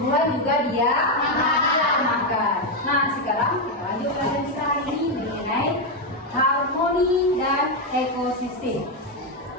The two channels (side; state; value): both; normal; correlation 0.05